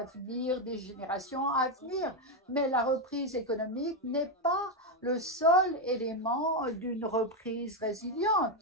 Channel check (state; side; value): normal; both; correlation 0.05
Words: des générations à venir. Mais la reprise économique n'est pas le seul élément d'une reprise